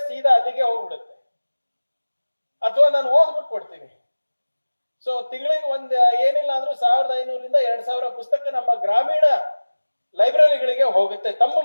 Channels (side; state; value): both; inverted; correlation -1.00